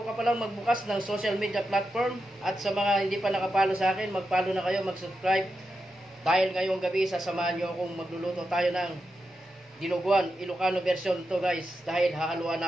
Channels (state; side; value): normal; both; correlation 0.88